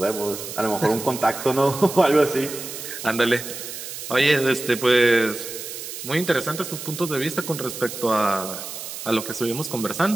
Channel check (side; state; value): right; noise; hiss, 9 dB below the sound